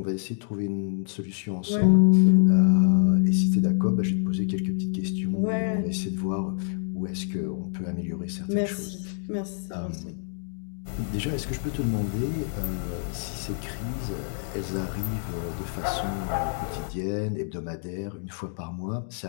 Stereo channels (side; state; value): right; silent; digital silence